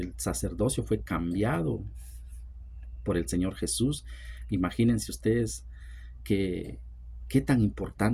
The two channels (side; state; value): both; identical; correlation 1.00